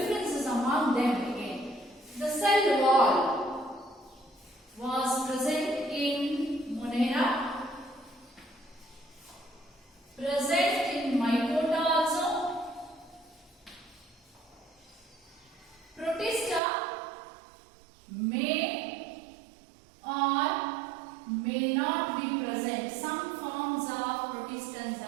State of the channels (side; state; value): left; drops out; at 16.6 s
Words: among them again. The cell wall was present in Monera, present in Mycota also. Protista may or may not be present. Some forms of protistans